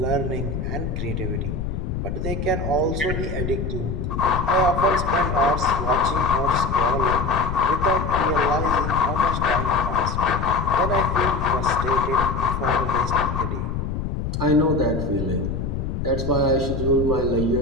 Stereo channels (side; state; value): left; noise; rumble, 3 dB below the sound